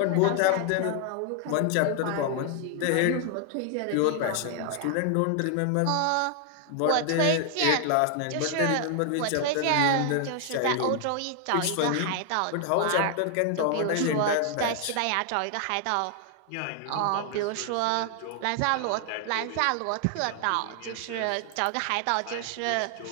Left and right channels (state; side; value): different; both; correlation 0.00